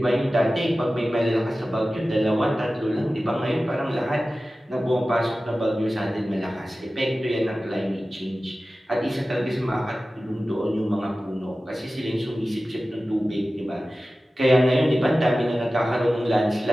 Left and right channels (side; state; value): both; normal; correlation 0.95